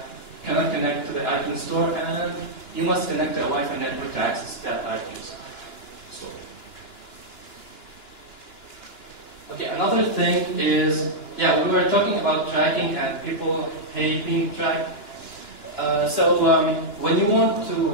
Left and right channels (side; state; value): right; late; 2.9 ms